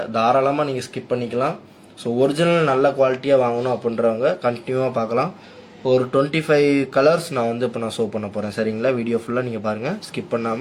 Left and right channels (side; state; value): both; identical; correlation 1.00